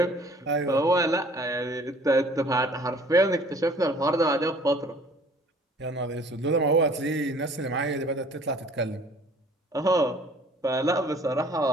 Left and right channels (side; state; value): both; normal; correlation 0.53